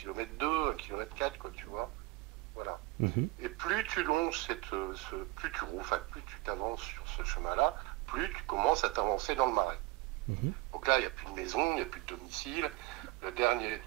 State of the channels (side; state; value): left; quieter; 20.3 dB